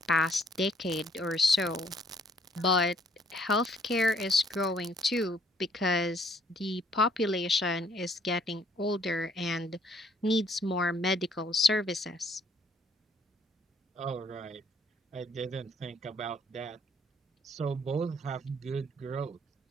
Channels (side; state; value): both; normal; correlation 0.64